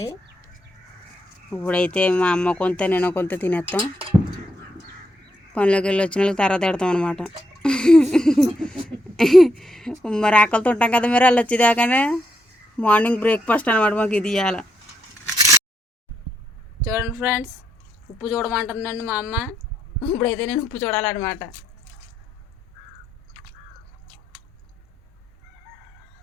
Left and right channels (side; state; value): both; normal; correlation 0.78